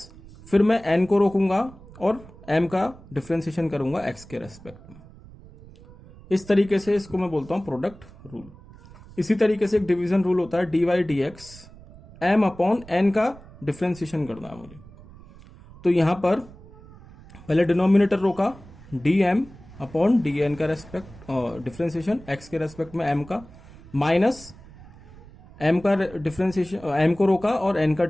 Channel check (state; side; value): noise; right; rumble, 20 dB below the sound